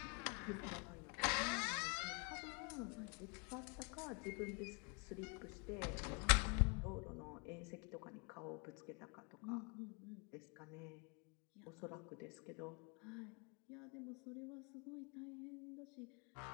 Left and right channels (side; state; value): right; quieter; 33.9 dB